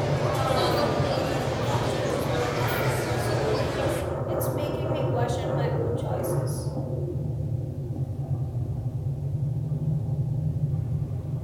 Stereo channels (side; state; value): both; identical; correlation 1.00